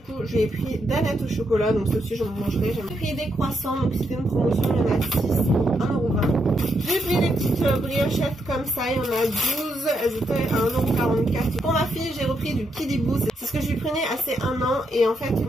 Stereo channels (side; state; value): both; normal; correlation 0.80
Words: j'ai pris Danettes au chocolat, donc ça aussi j'en mangerai. J'ai pris des croissants, donc c'était une promotion, il y en a 6, 1,20 €. J'ai pris des petites briochettes comme ça, il y en a 12, elles étaient à 1,44 €. Pour ma fille, j'ai repris du Kidibou, c'est ce que je lui prenais assez 1 an, et en fait